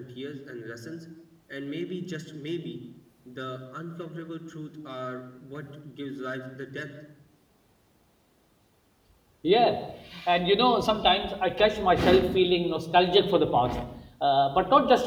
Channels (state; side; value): identical; both; correlation 1.00